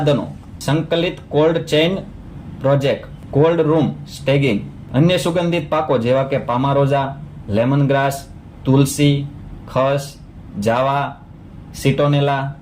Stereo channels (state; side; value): identical; both; correlation 1.00